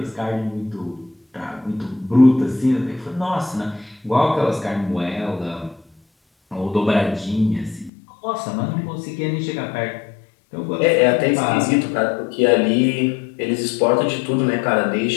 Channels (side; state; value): right; drops out; at 7.9 s